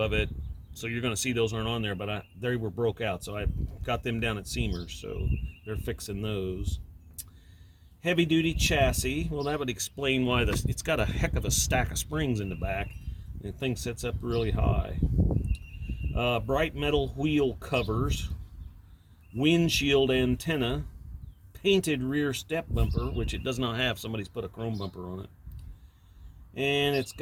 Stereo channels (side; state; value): both; identical; correlation 1.00